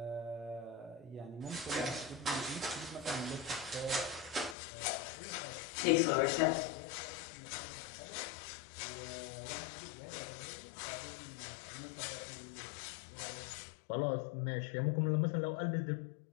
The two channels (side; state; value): right; drops out; at 4.5 s